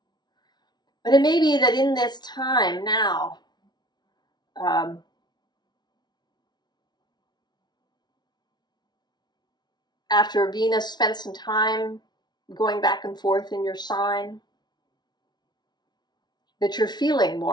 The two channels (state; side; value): late; right; 0.20 ms